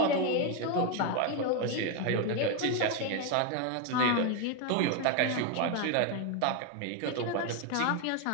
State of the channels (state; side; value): different; both; correlation 0.01